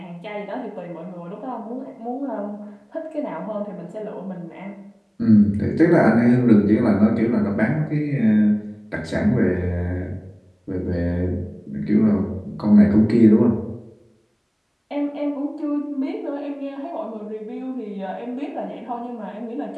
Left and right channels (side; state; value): both; identical; correlation 1.00